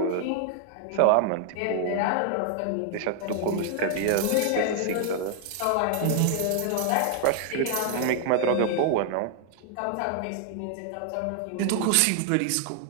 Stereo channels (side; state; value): both; different; correlation 0.00